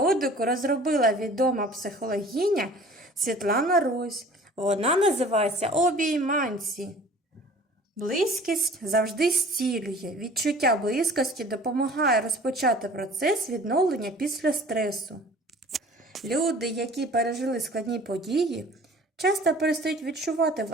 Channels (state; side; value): normal; both; correlation 0.47